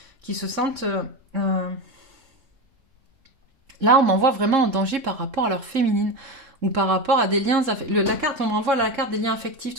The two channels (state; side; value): late; left; 3.7 ms